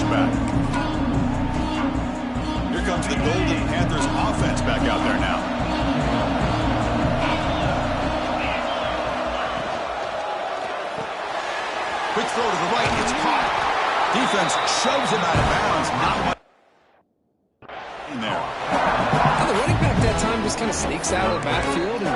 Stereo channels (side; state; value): both; identical; correlation 1.00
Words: Here comes the Golden Panthers offense back out there now. Quick throw to the right, it's caught. Defense shoves him out of bounds. Not much in there. Now the running back that time just kind of sneaks out of the backfield